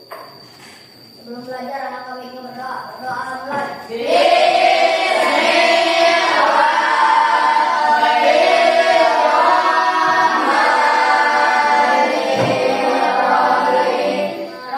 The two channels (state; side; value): identical; both; correlation 1.00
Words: Sebelum belajar, anak kami ingin berdoa. Berdoa mulai.